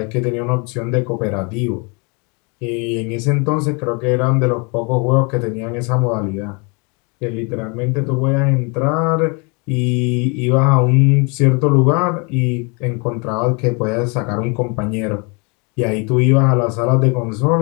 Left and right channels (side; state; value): right; quieter; 32.0 dB